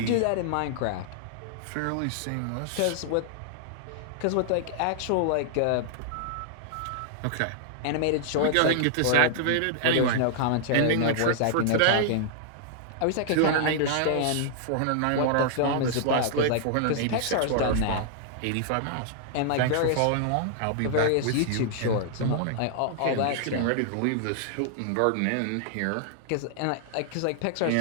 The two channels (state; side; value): different; both; correlation -0.01